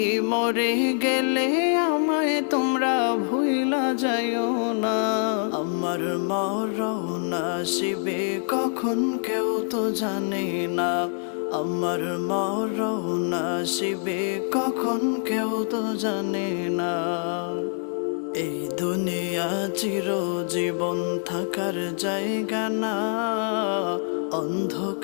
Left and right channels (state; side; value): silent; right; 62 dB below the other